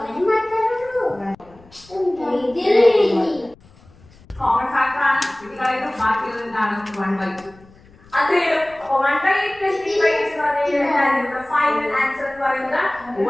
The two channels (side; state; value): left; noise; rumble, 26 dB below the sound